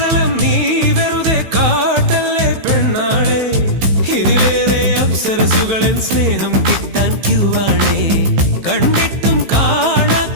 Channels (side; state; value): left; late; 15 ms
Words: നീ വെറുതെ കാട്ടല്ലേ പെണ്ണാളെ, ഇതിലേറെ അപ്സരസുകളൻ സ്നേഹം കിട്ടാൻ ക്യൂവാണേ. കണ്ടിട്ടും